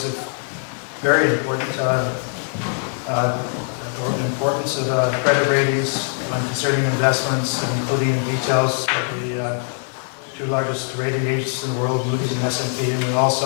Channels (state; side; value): silent; right; 64 dB below the other